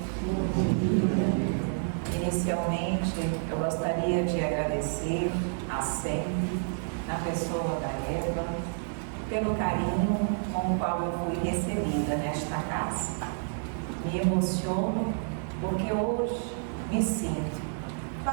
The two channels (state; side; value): silent; left; 58 dB below the other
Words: Inicialmente, eu gostaria de agradecer a SEM, na pessoa da Eva, pelo carinho com o qual eu fui recebida nesta casa. Me emociono porque hoje me sinto